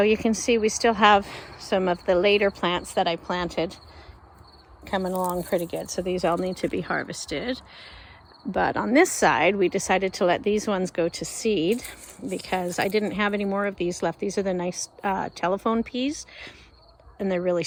you can see we still have some of the later plants that I planted coming along pretty good. So these all need to be harvested. But on this side, we decided to let these ones go to seed because I didn't have any more of these left. These are the nice telephone peas, and they're really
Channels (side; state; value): both; identical; correlation 1.00